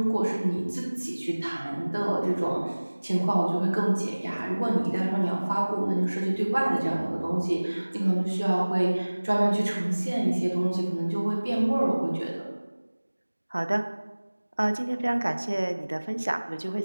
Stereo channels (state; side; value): inverted; both; correlation -1.00